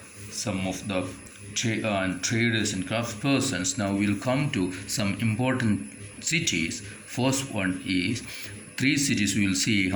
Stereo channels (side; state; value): both; identical; correlation 1.00